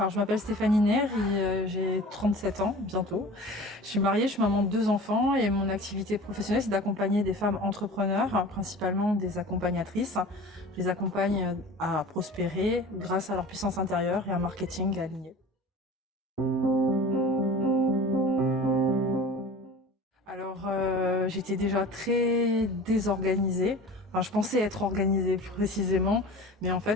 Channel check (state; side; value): normal; both; correlation 0.39